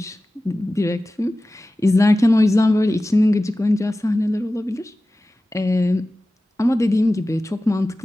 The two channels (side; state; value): both; normal; correlation 0.96